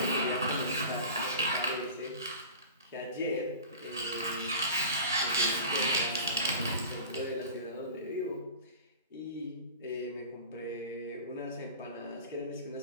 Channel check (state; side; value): inverted; both; correlation -0.36